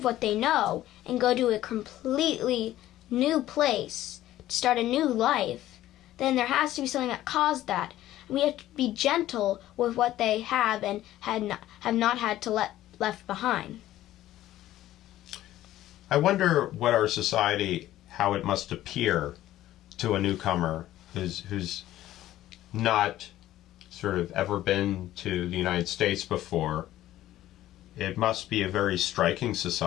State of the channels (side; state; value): right; quieter; 14.1 dB